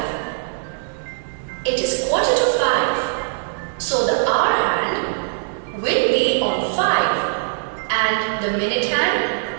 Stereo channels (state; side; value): silent; left; digital silence